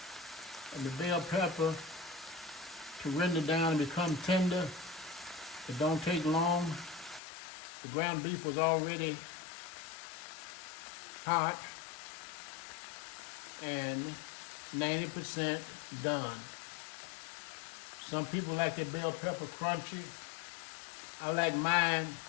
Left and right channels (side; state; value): right; drops out; at 7.2 s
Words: and the bell pepper to render down and become tender. It don't take long. The ground beef was already hot and 90% done. Some people like their bell pepper crunchy. I like mine